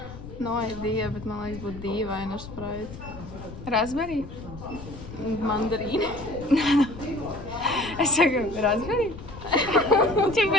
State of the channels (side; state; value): left; noise; rumble, 13 dB below the sound